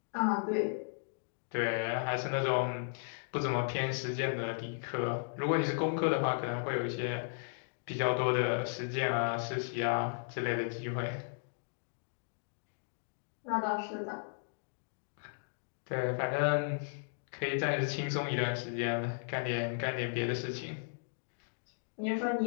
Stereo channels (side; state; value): right; silent; digital silence